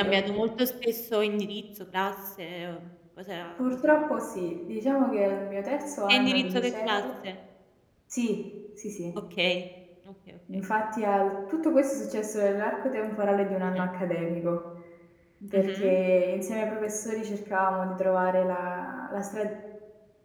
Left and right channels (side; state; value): both; identical; correlation 1.00